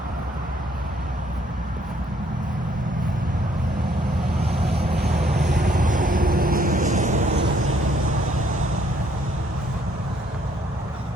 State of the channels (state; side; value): normal; both; correlation 0.66